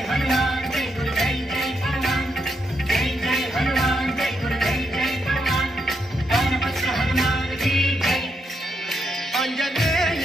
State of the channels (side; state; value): both; normal; correlation 0.80